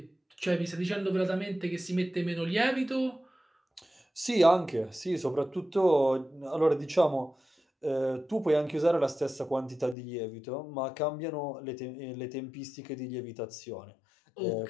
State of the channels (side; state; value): right; drops out; at 10.0 s